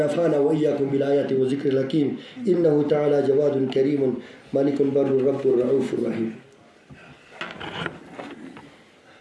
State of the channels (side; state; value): both; identical; correlation 1.00